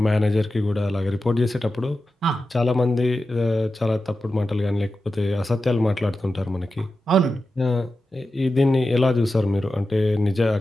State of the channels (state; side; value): normal; both; correlation 0.92